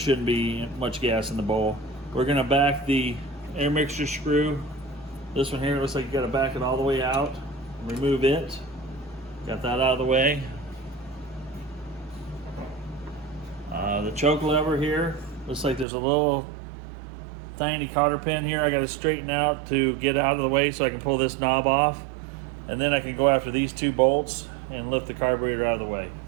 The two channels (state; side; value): drops out; left; at 15.9 s